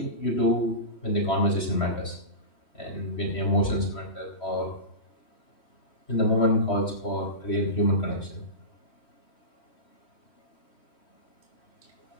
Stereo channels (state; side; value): late; right; 3.1 ms